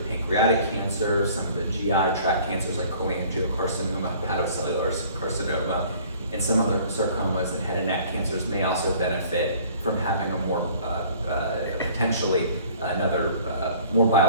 pancreatic cancer, some of the GI tract cancers like cholangiocarcinoma, hepatocellular carcinoma, and some other sarcomas and head and neck cancers may also benefit from having a more potentially another more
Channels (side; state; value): both; inverted; correlation -0.52